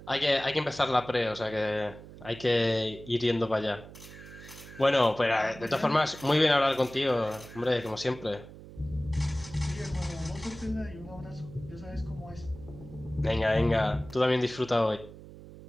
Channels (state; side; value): noise; right; hum, 17 dB below the sound